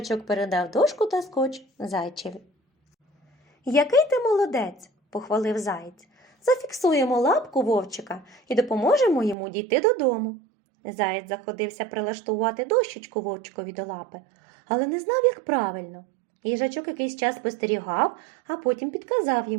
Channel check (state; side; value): drops out; left; at 9.3 s